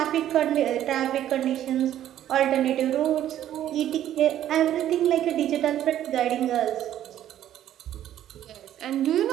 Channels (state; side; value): quieter; left; 11.7 dB